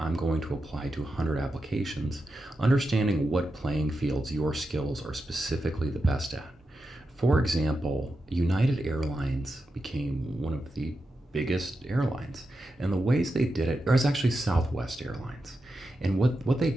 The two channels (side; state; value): both; normal; correlation 0.89